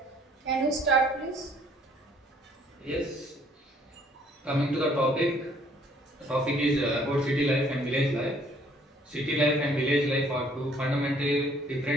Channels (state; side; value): normal; both; correlation 0.61